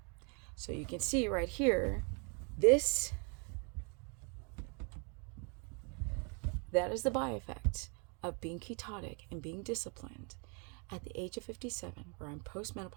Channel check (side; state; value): left; quieter; 36.3 dB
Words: So you can see right here, that is the byeffect of being ketotic and being disciplined at the age of 57, where I'm